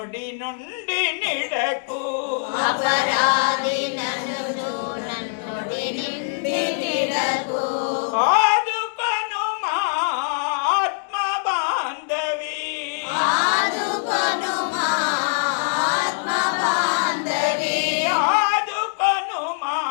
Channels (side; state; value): right; silent; digital silence